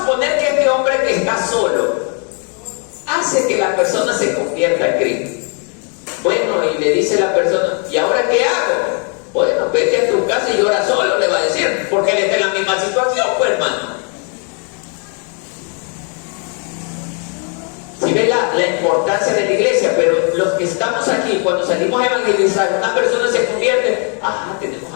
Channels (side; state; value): right; quieter; 38.9 dB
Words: que este hombre que está solo hace que la persona se convierta en Cristo. Bueno, y le dice la persona, ¿y ahora qué hago? Bueno, vete a tu casa y llora solo, le va a decir, porque él está en la misma situación, pues hermano. Si ve la importancia de la iglesia, pero los que estamos aquí, cuando salimos a evangelizar, una persona se convierte, tenemos